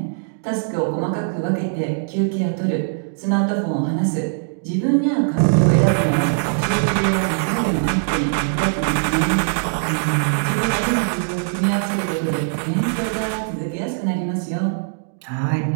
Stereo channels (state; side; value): silent; left; digital silence